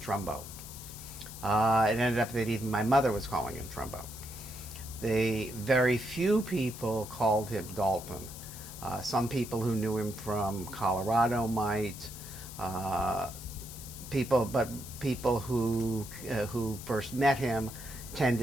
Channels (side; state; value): left; noise; hiss, 13 dB below the sound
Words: It ended up that even my mother was calling him Trumbo. The very few people called him Dalton. Some people who knew him from Colorado might. Uh, but people who first met him